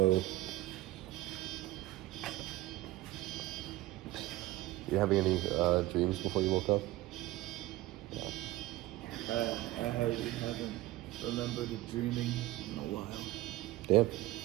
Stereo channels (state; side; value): quieter; left; 17.4 dB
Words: You having any dreams before you woke up? I haven't remembered a dreaming in a while. Damn.